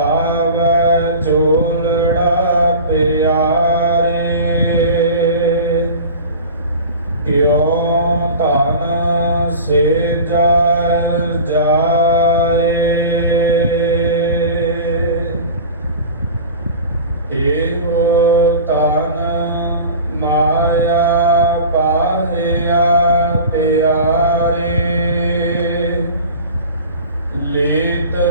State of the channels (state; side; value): inverted; both; correlation -0.36